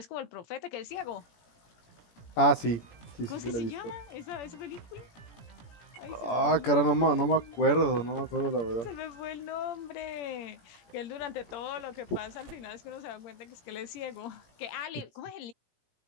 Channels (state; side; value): late; right; 17 ms